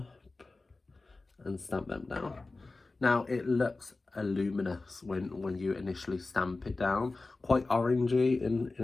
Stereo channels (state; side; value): quieter; right; 3.4 dB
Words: and stamp them down. Now it looks luminous when you initially stamp it down, quite orangey